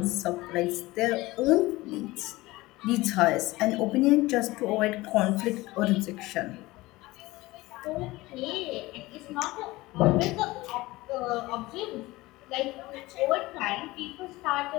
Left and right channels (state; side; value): quieter; right; 19.8 dB